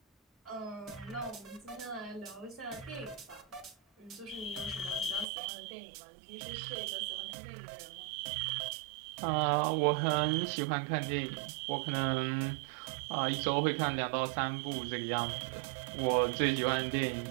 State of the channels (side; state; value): left; drops out; at 5.2 s